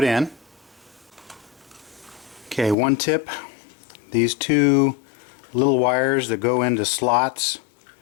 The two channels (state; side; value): drops out; right; at 2.8 s